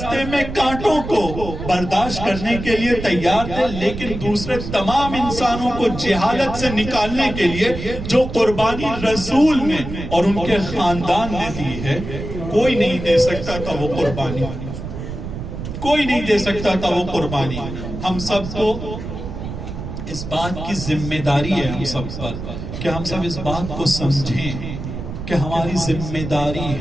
میں کانٹوں کو برداشت کرنے کے لیے تیار تھے، لیکن دوسرے تمام انسانوں کو جہالت سے نکالنے کے لیے جو قربانی رسول نے اور ان کے خاندان نے دی ہے، کوئی نہیں دے سکتا تھا وہ قربانی، کوئی نہیں دے سکتا تھا وہ قربانی۔ ہم سب کو اس بات کی ذمہ داری ہے، ہم سب پر، کہ ہم سب اس بات کو سمجھیں کہ ہماری ذمہ داری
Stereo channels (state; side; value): noise; right; rumble, 8 dB below the sound